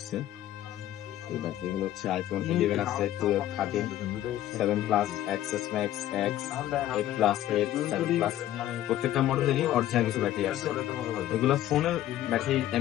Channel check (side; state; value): right; quieter; 13.1 dB